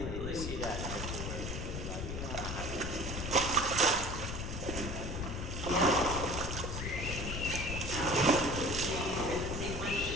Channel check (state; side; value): noise; left; rumble, 4 dB below the sound